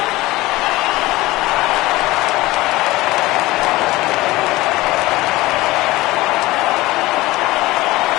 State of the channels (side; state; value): right; quieter; 19.2 dB